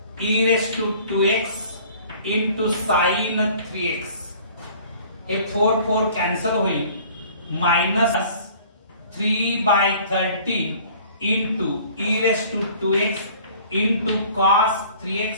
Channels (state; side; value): inverted; both; correlation -0.51